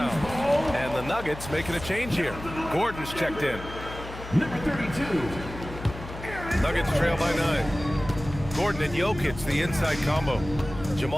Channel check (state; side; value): noise; left; hum, 12 dB below the sound